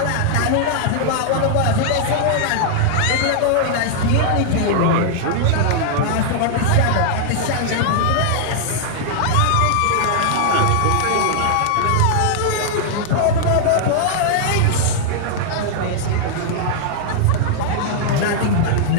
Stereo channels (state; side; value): different; both; correlation -0.01